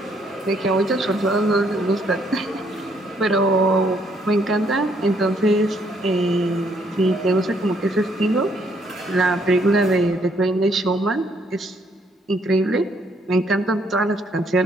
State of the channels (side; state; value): both; normal; correlation 0.69